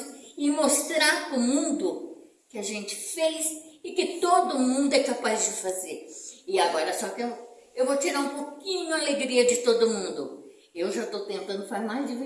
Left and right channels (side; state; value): both; identical; correlation 1.00